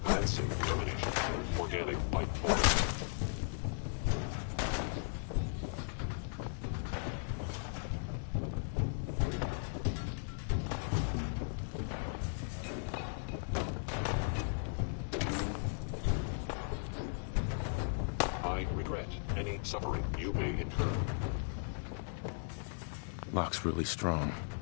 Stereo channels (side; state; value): right; silent; digital silence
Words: That's elimination of organic life form. I regret any suffering you may incur. Lock's really strong.